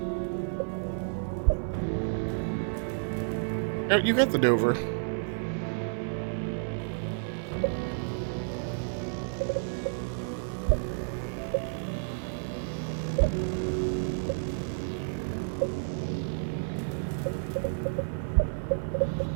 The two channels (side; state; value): left; silent; 55 dB below the other